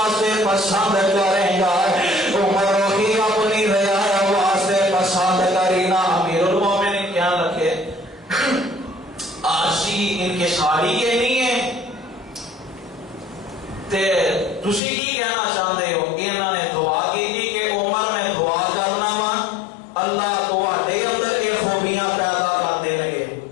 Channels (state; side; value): drops out; right; at 14.8 s